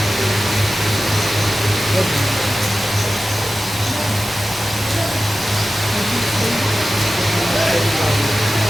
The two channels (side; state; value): both; normal; correlation 0.95